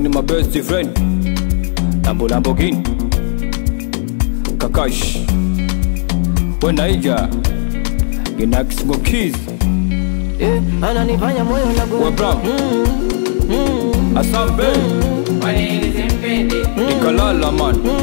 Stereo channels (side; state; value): right; silent; digital silence